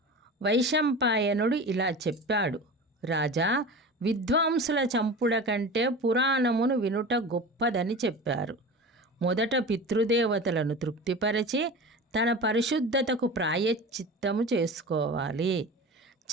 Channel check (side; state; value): both; normal; correlation 0.32